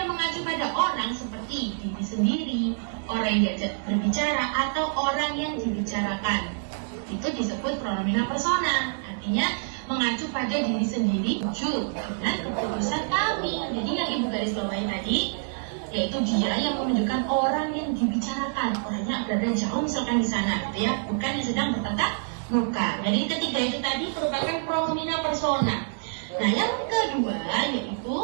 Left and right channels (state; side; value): silent; left; digital silence